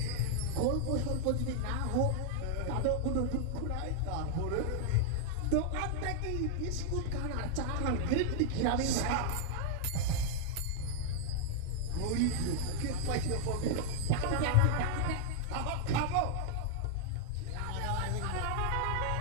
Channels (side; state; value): both; different; correlation 0.00